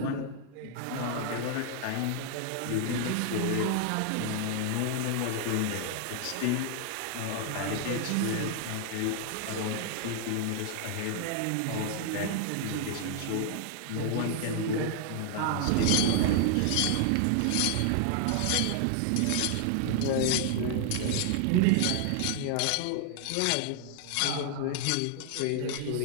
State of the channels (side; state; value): both; different; correlation 0.00